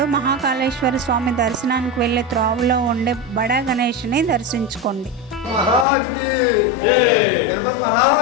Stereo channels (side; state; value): right; drops out; at 5.9 s